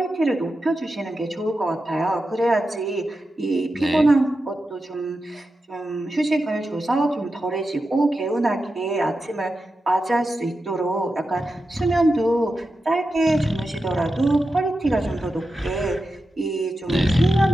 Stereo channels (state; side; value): normal; both; correlation 0.90